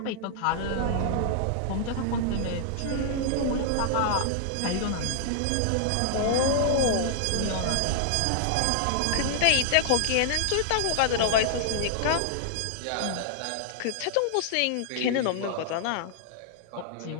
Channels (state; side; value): different; both; correlation -0.01